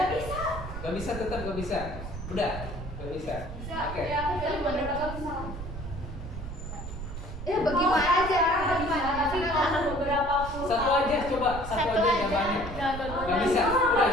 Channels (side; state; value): right; noise; rumble, 8 dB below the sound